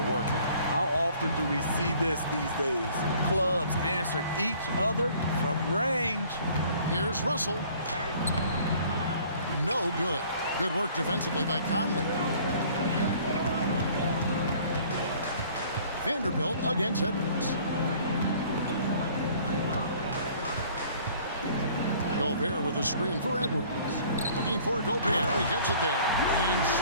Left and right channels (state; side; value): inverted; both; correlation -0.54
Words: working. How often do we see this these days? Clubs answering each other from range. Here's Russell. No good. Good work defensively by Conley. Vanderbilt against Edwards. Gobert with a screen for Edwards. Looking for Gobert. He gets it there. And